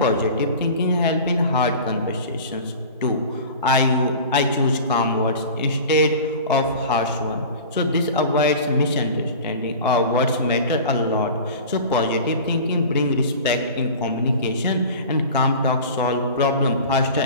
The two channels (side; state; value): both; inverted; correlation -0.37